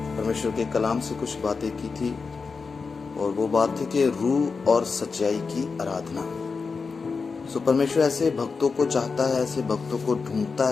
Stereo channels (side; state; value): right; quieter; 4.8 dB